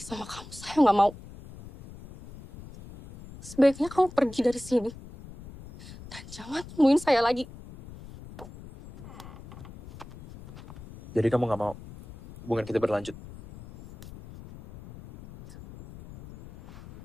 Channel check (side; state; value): left; noise; rumble, 16 dB below the sound